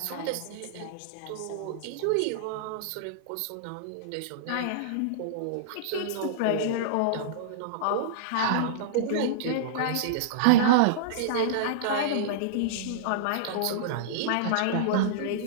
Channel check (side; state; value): both; different; correlation -0.02